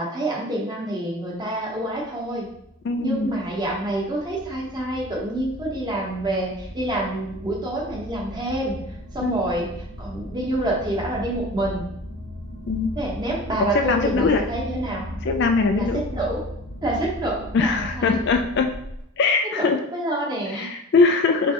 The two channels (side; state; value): both; normal; correlation 0.38